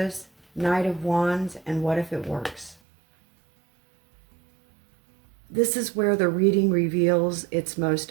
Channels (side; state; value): left; drops out; at 2.8 s